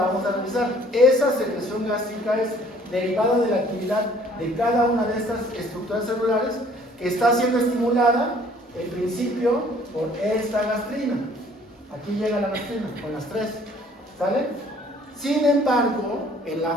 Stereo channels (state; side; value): normal; both; correlation 0.57